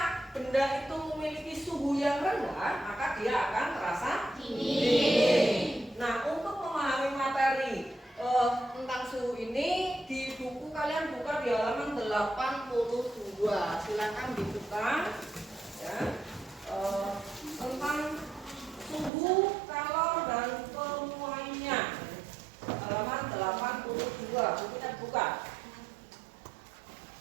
benda itu memiliki suhu yang rendah, maka dia akan terasa dingin. Nah, untuk memahami materi tentang suhu ini di buku kalian buka di halaman 82. Silakan dibuka ya. Tentang suhu, kalor, dan penuaiannya, halaman 82. Bukunya dibuka.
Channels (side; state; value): left; drops out; at 19.1 s